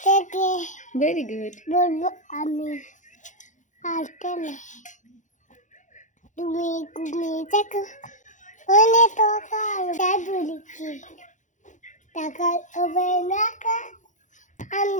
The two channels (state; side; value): late; right; 0.36 ms